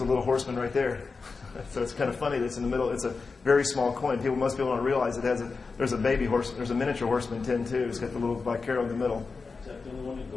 little horseman right there. So it's kind of funny that it's in the middle. It's a very small coin. Most people don't realize there's a baby horseman. There's a miniature Horseman 10 too. It's got the little Vicaro in the middle. Is that the only one in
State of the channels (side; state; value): right; quieter; 4.5 dB